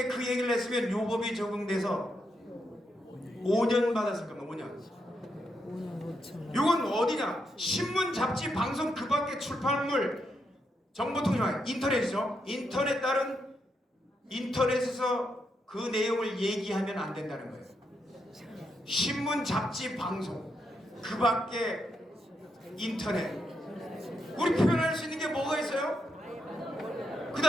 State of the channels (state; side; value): normal; both; correlation 0.81